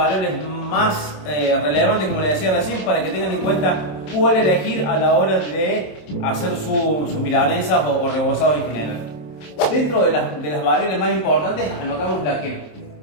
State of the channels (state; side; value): late; right; 27 ms